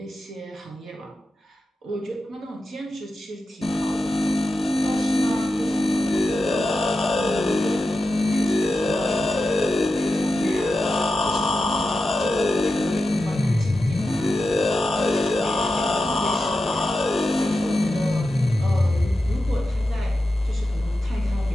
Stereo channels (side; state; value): both; normal; correlation 0.91